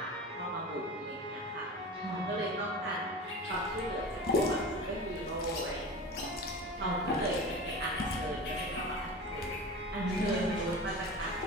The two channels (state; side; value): normal; both; correlation 0.32